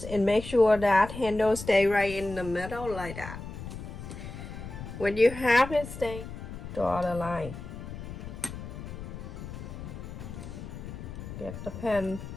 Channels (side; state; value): left; noise; rumble, 10 dB below the sound